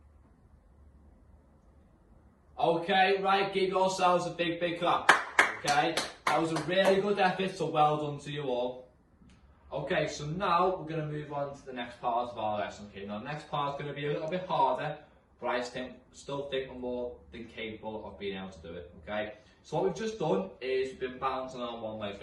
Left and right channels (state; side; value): identical; both; correlation 1.00